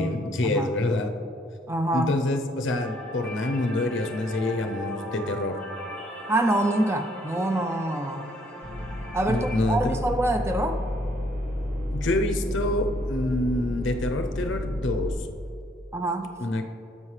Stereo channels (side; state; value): both; normal; correlation 0.66